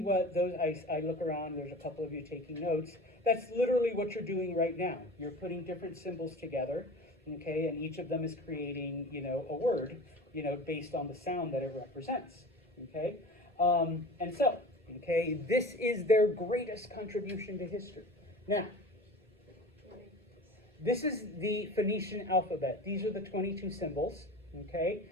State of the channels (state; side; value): normal; both; correlation 0.37